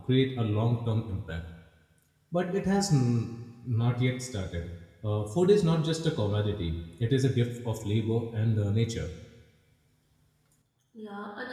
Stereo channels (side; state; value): both; identical; correlation 1.00